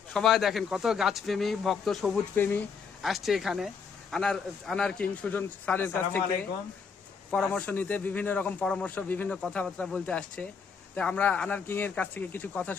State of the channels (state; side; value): quieter; right; 5.8 dB